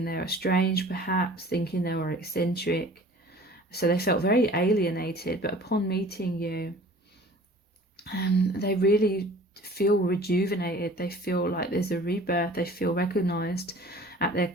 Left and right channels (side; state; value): both; normal; correlation 0.46